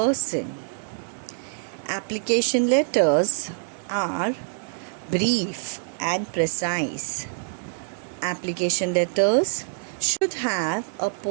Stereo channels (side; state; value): left; silent; digital silence